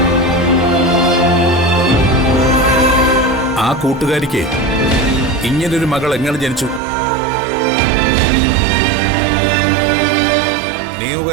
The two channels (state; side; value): drops out; left; at 6.8 s